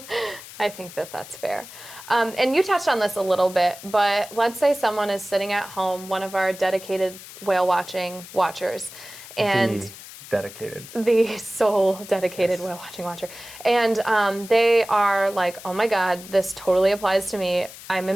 I think that that's fair. And you touched on this a little bit, but let's say someone is sitting at home, one of our dedicated whale watching watchers, and the sole dedicated whale watching watcher, and they are like, oh my God, this totally applies to me. I'm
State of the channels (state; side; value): noise; left; hiss, 16 dB below the sound